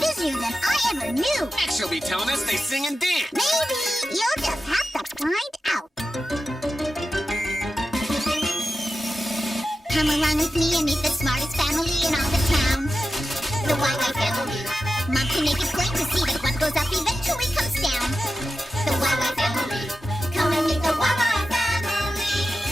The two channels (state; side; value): normal; both; correlation 0.92